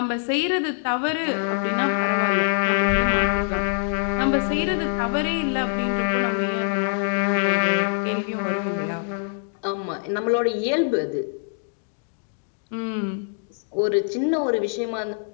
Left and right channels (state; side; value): silent; right; 63 dB below the other